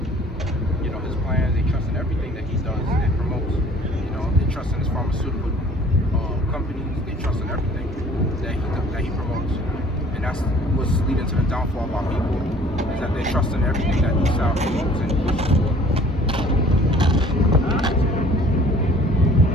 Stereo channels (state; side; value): normal; both; correlation 0.52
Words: plans, they trust in everything that he does and promotes. They trust in his pharmaceutical companies, they trust in everything that he promotes. And that's what's leading to the downfall of our people, is that they trust in everything that Esau promotes and pushes for.